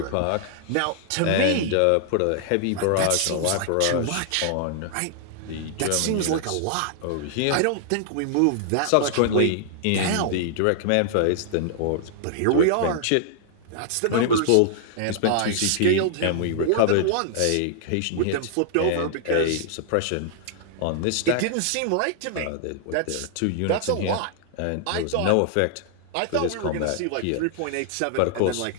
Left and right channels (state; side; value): different; both; correlation -0.01